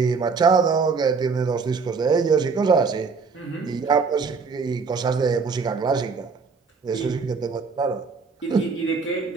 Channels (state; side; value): quieter; left; 4.9 dB